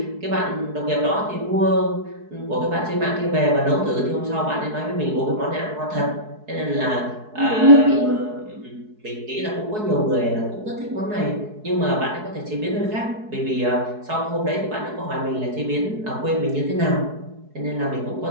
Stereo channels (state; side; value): late; left; 4.7 ms